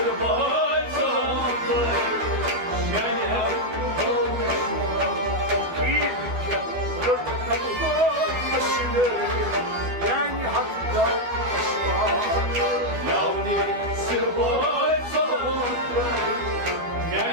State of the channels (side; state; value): left; late; 12 ms